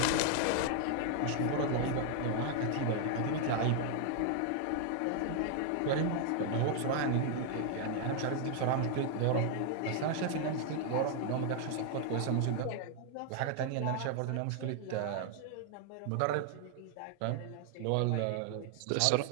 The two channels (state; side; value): different; both; correlation 0.00